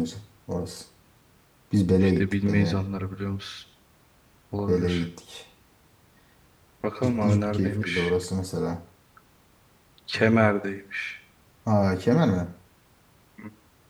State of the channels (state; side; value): identical; both; correlation 1.00